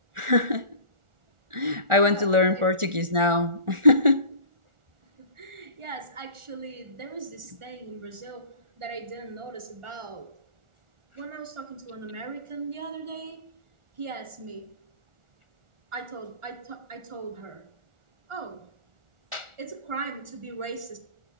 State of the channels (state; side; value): late; left; 1.4 ms